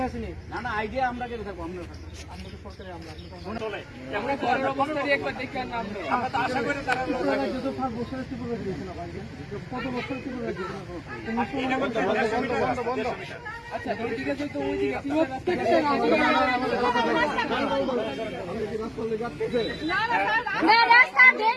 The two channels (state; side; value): identical; both; correlation 1.00